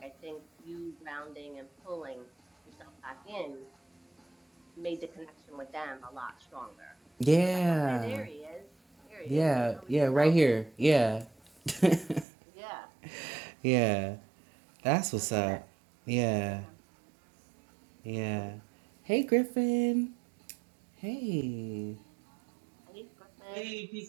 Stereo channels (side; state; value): left; drops out; at 12.2 s